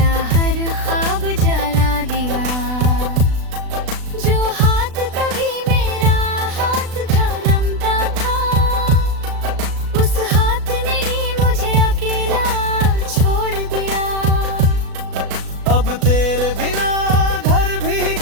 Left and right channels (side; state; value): left; late; 36 ms